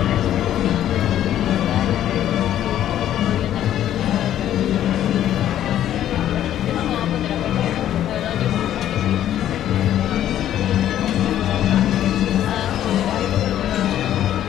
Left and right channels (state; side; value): quieter; right; 11.6 dB